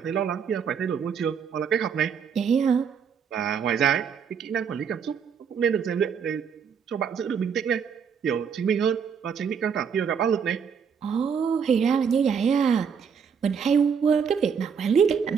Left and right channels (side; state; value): left; quieter; 6.8 dB